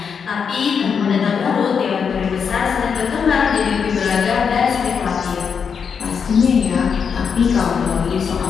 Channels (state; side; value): quieter; right; 6.5 dB